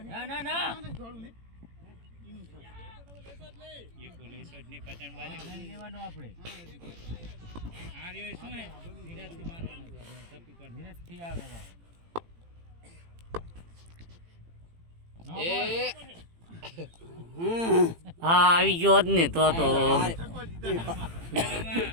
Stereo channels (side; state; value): left; late; 18 ms